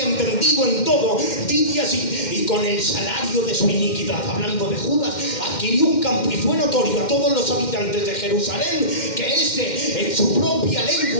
en todo, dice así: y con el salario de su iniquidad, hablando de Judas, adquirió un campo y fue notorio a todos los habitantes de Jerusalén que este, en su propia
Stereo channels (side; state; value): right; late; 2.1 ms